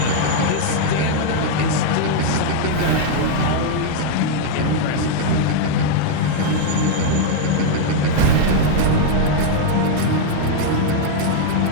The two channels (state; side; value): different; both; correlation 0.00